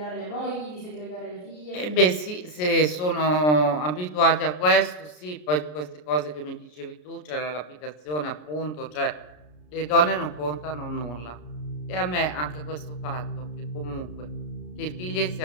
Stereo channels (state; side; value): late; right; 33 ms